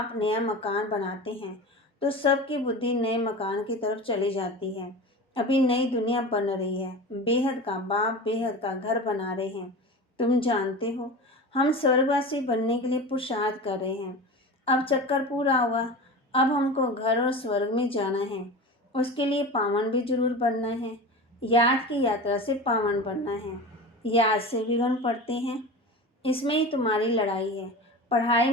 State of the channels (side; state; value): both; normal; correlation 0.31